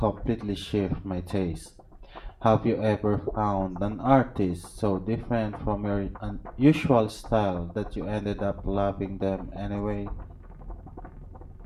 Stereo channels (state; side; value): identical; both; correlation 1.00